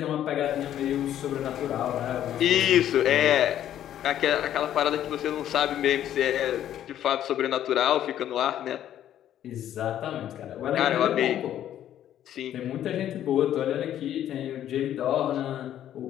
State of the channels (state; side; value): quieter; right; 11.3 dB